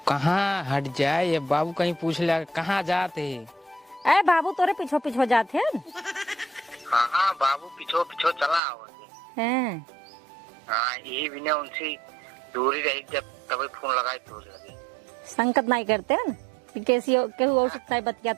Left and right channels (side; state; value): left; drops out; at 8.6 s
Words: कहाँ हट जाए, अब बाबू कहीं पूछ लिया कहाँ जाते। अरे बाबू तोरे पीछो पीछो जाते हैं। हाँ हाँ बाबू पिछो पिछो चला आवत हैं। हाँ यही भी ने उनसे दूरी रही, जब तभी फोन लगाए तो लगे। संकट नहीं करते हैं कि कैसी केहू और से बतिया